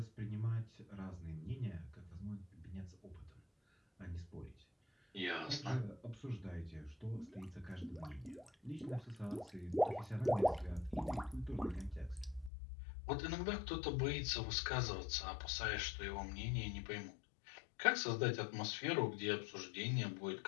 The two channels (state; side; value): drops out; right; at 12.5 s